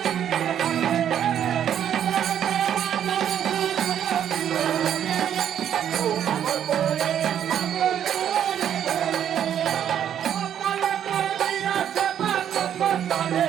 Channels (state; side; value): quieter; left; 9.6 dB